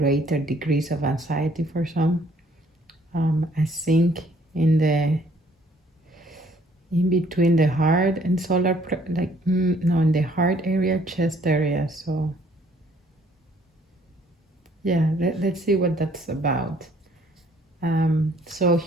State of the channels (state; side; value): normal; both; correlation 0.61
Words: degrees of anxiety for some. I think in between the heart and solar in the heart area, chest area. So let's see what that's about. So